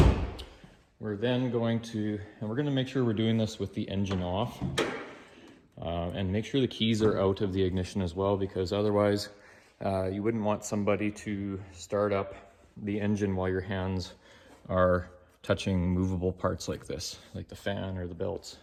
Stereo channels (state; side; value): identical; both; correlation 1.00